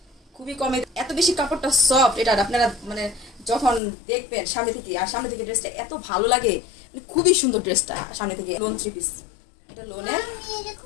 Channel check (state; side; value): drops out; right; at 3.8 s